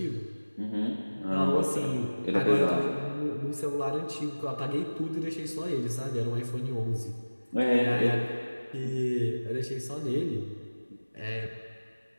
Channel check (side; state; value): both; inverted; correlation -1.00